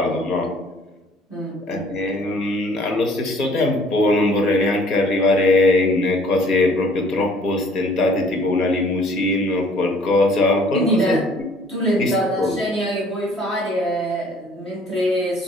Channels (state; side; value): normal; both; correlation 0.57